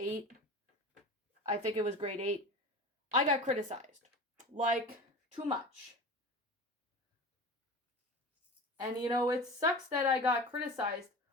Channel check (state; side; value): normal; both; correlation 0.33